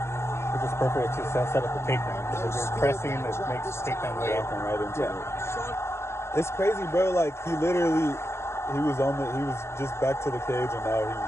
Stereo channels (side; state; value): right; late; 0.13 ms